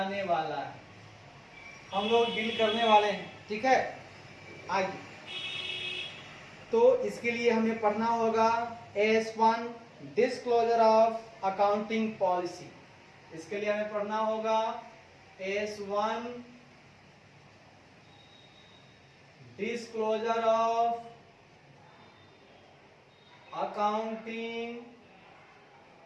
वाला है। हम लोग डील करने वाले हैं, ठीक है। आगे तो इसके लिए हमें पढ़ना होगा S1 disclosure of accounting policy. इसके लिए हमें पढ़ना होगा S1 disclosure of accounting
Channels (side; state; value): both; identical; correlation 1.00